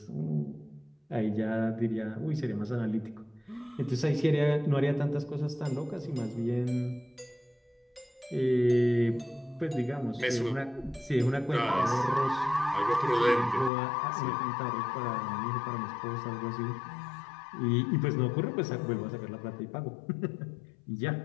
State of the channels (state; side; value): drops out; right; at 13.7 s